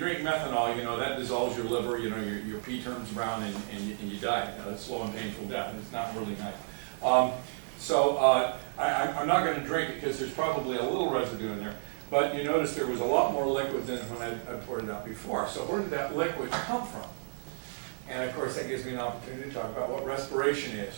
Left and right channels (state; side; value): silent; left; 57 dB below the other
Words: methanol, that dissolves your liver, your pee turns brown and you die. It's slow and painful death, and it's not really nice. I'm not going to drink it because there's probably a little residue in there. But you notice there was a lot more liquid than when I poured it out before. So where did that liquid come from? And of course that gives me an opportunity to talk about what respiration is.